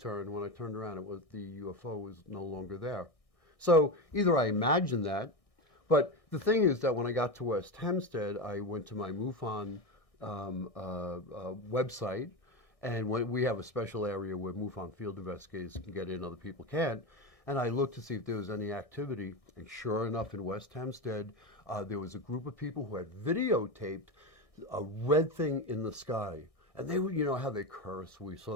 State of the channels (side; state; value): right; late; 1.6 ms